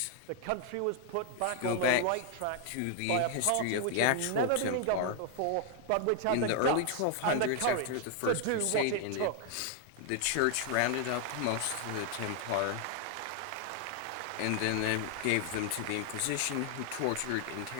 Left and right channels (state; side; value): different; both; correlation 0.00